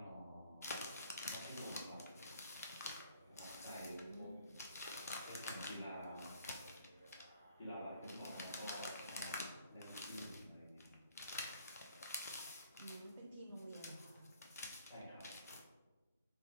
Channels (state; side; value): inverted; both; correlation -0.59